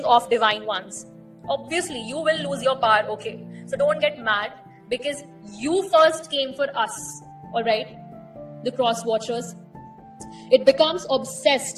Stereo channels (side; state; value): both; identical; correlation 1.00